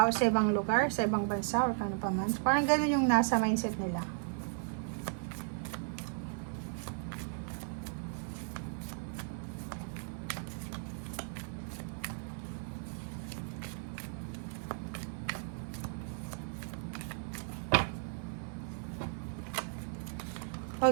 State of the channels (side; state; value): left; silent; 54 dB below the other